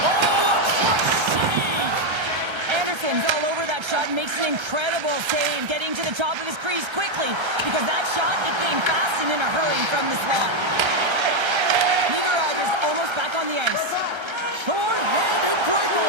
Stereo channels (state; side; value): late; left; 1.3 ms